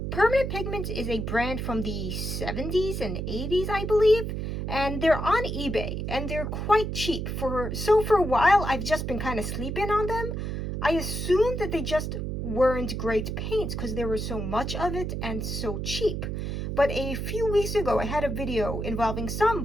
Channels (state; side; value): noise; right; hum, 3 dB below the sound